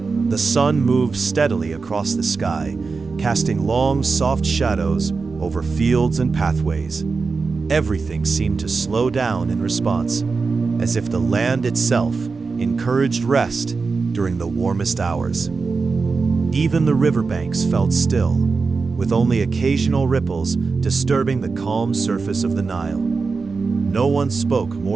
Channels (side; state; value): left; quieter; 4.5 dB